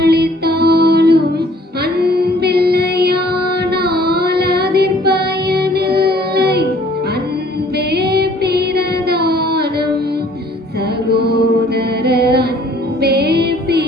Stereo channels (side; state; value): both; normal; correlation 0.57